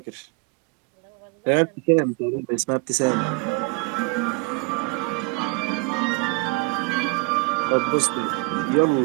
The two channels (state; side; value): quieter; left; 31.1 dB